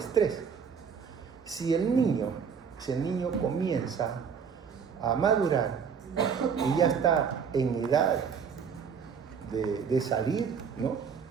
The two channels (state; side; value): quieter; left; 6.5 dB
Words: Si el niño comienza a madurar y ya está en edad de salir, ¿no?